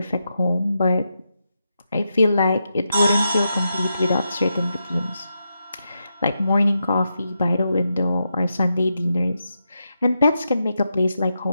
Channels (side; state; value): both; inverted; correlation -0.86